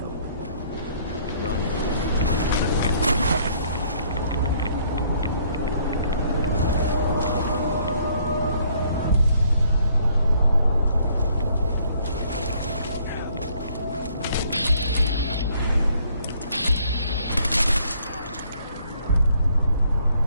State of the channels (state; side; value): inverted; both; correlation -0.64